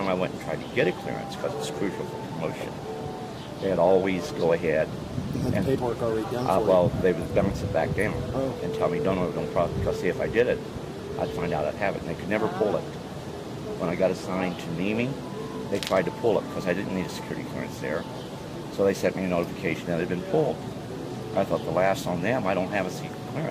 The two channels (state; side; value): identical; both; correlation 1.00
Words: I went and tried to get a clearance, because it's crucial for promotion, they'd always go ahead. You had the paperwork already done for you. Well, they would bounce it back down and tell me, don't problem, because see, if I did it, I'd find out I'd have it. And they could never pull it. When I got assigned to Nemi, they tried to pull it because I didn't need a security clearance there. So they sent me a notification that it had been pulled. I thought the last on them, I don't have a secret